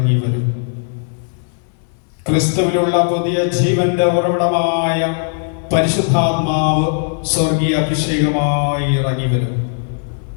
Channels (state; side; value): silent; right; 67 dB below the other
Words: വരും. ക്രിസ്തുവിലുള്ള പുതിയ ജീവന്റെ ഉറവിടമായ പരിശുദ്ധാത്മാവ് സ്വർഗീയ അഭിഷേകമായി ഇറങ്ങി വരും.